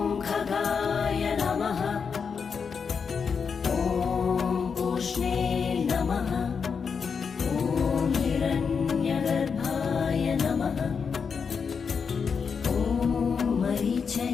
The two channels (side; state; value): right; quieter; 6.0 dB